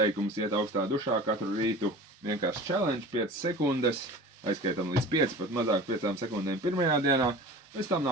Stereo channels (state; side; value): normal; both; correlation 0.38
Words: iet augstā dušā katru rītu, vienkārši challenge 5 sekundes, aizskaitam līdz 5, pat mazāk 5 sekundēm pirmajā dienā, pēc tam